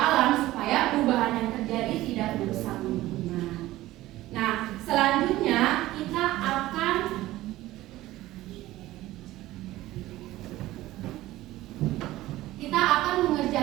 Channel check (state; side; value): quieter; left; 16.4 dB